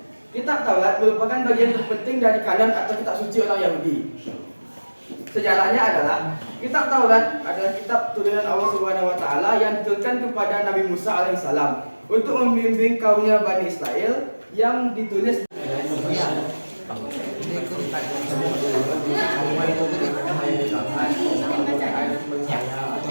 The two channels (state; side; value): inverted; both; correlation -1.00